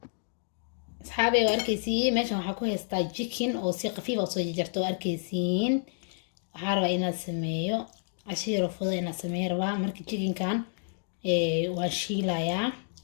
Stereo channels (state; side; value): silent; right; digital silence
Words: أصحابي وأركيسين ماشي waxaa ku haystaa chicken oo si qafiif ah soo jarjarto arkiisiin waxaa rabaa inaad sameeyo cashiir fudud inaad sameeyo rabaa marka chicken kan waan shiilayaa